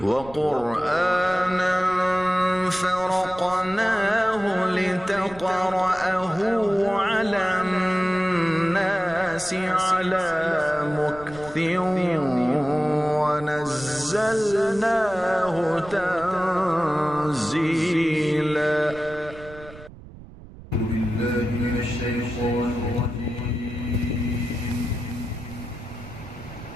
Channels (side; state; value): right; noise; rumble, 18 dB below the sound